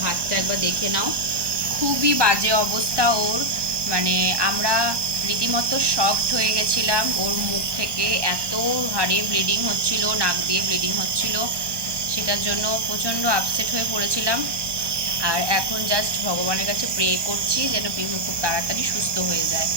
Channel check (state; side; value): late; left; 1.2 ms